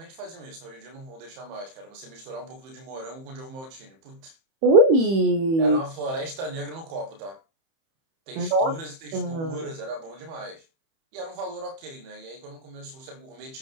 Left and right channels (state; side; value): late; left; 31 ms